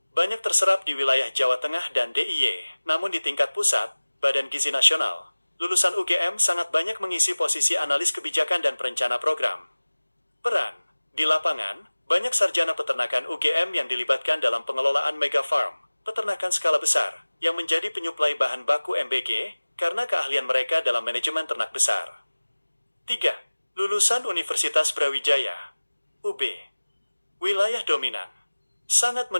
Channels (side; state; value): both; inverted; correlation -1.00